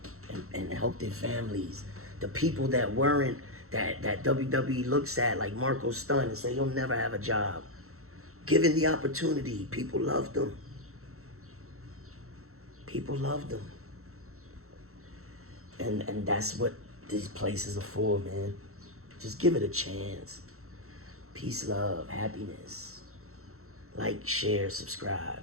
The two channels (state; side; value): late; left; 0.63 ms